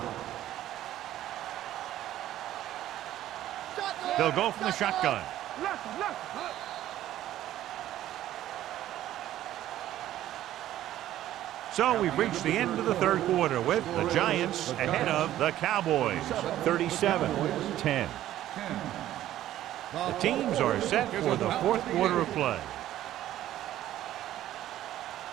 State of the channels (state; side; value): quieter; left; 13.2 dB